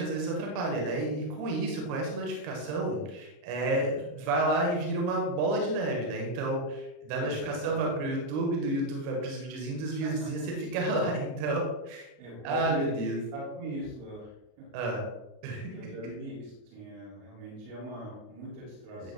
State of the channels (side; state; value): left; late; 32 ms